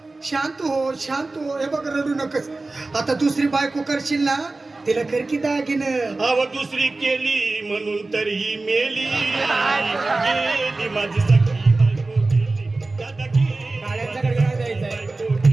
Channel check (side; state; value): left; quieter; 3.3 dB